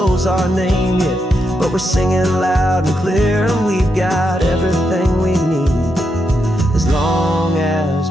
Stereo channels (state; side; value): normal; both; correlation 0.83